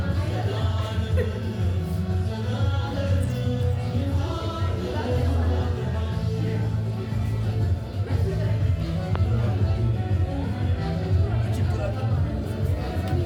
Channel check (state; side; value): identical; both; correlation 1.00